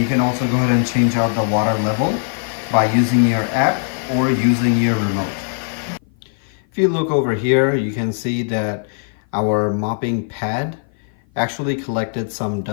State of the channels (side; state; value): right; silent; 55 dB below the other